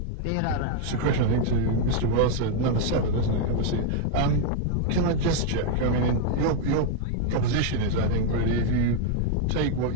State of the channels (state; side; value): different; both; correlation 0.00